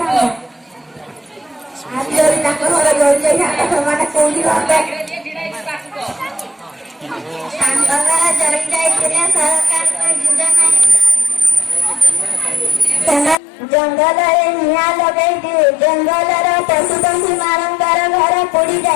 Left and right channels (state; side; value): drops out; right; at 13.4 s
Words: आज जळी तांका घर जळी जाई थांबे समाने कोली होते तांका घर जळी जाई तिने सरकार को जुदा नाही जंगल रे निया लगई दी जंगल रे पशु पक्षी मानकर घर पोड़ी